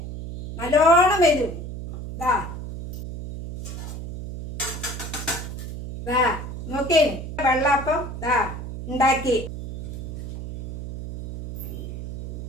നല്ലോണം വരും. നോക്കേ, വെള്ളാപ്പം ഉണ്ടാക്കി.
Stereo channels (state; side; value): noise; right; hum, 8 dB below the sound